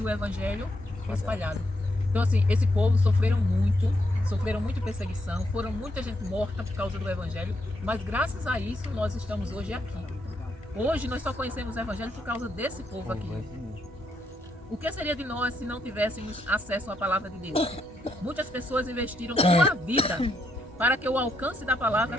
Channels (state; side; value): normal; both; correlation 0.78